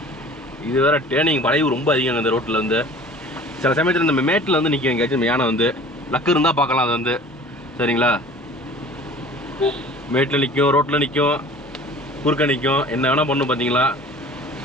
இது வேற டேர்னிங் வளைவு ரொம்ப அதிகம் இந்த ரோட்டில் வந்து. சில சமயத்தில் இந்த மேட்டில் வந்து நிற்கும் எங்கேயாச்சும் யானை வந்து. லக்கு இருந்தால் பார்க்கலாம் அது வந்து. சரிங்களா, மேட்டில் நிற்கும், ரோட்டில் நிற்கும், குறுக்க நிற்கும், என்ன வேணால் பண்ணும் பார்த்தீங்களா.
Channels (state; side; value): normal; both; correlation 0.44